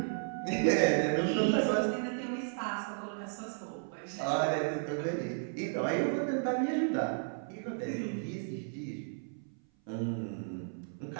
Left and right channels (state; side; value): silent; left; 55 dB below the other